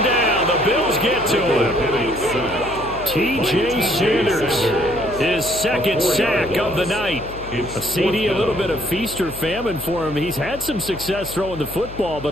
down. The Bills get to him. T.J. Sanders, his 2nd sack of the night. A CD, a little bit of feast or famine for him. He's had some success throwing the football,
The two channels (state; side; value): noise; left; hum, 14 dB below the sound